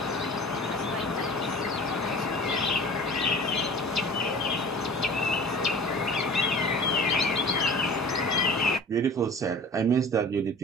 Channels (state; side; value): normal; both; correlation 0.41